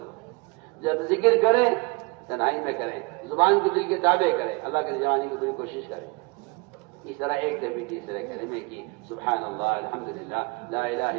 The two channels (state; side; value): quieter; left; 29.0 dB